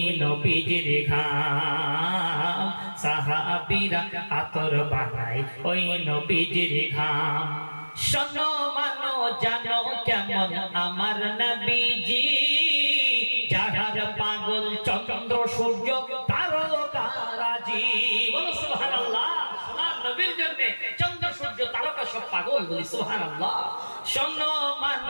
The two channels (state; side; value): inverted; both; correlation -1.00